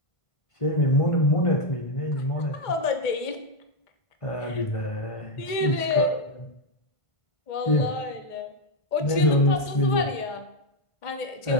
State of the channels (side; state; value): right; late; 1.5 ms